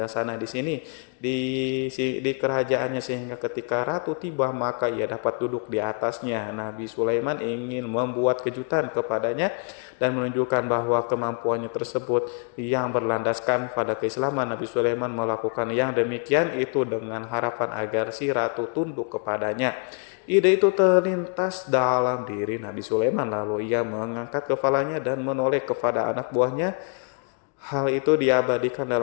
di sini di kerajaannya, sehingga ketika ratu tiba maka ia dapat duduk di atasnya. Nabi Sulaiman ingin membuat kejutan kepadanya dan menunjukkan bahwa kemampuannya tersebut yang berlandaskan pada keislaman. Nabi Sulaiman melakukan yang demikian itu dengan harapan agar si ratu tunduk kepadanya. Ide itu terlintas dalam diri Nabi Sulaiman, lalu ia mengangkat kepalanya dan menoleh kepada anak buahnya. Hal itu diabadikan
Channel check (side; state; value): right; quieter; 39.8 dB